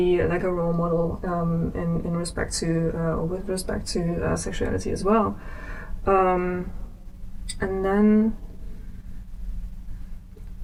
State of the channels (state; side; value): identical; both; correlation 1.00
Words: like a role model in respect to, or with respect to sexuality as well. And then